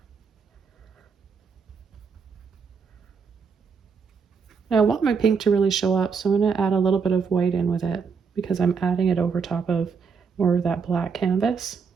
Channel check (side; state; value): left; quieter; 5.7 dB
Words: Now I want my pink to really show up, so I'm going to add a little bit of white in with it because I'm adding it over top of more of that black canvas.